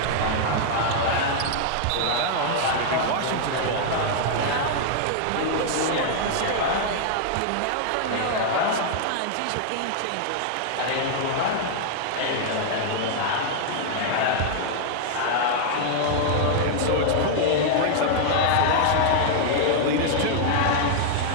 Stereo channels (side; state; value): both; different; correlation -0.01